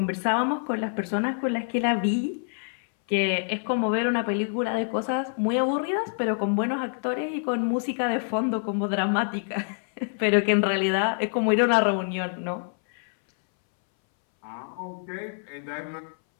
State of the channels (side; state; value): right; silent; 61 dB below the other